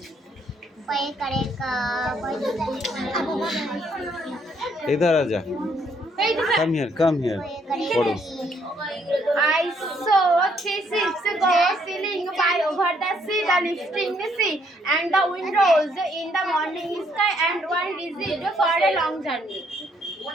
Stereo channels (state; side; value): normal; both; correlation 0.69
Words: इधर आजा, come here पढ़ो। I saw 3 ships go sailing by over the sea, the lifting the sea and the wind rose in the morning sky and one visit for a long journey.